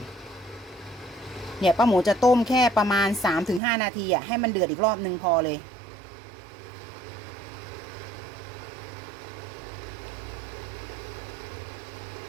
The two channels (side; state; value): left; drops out; at 3.6 s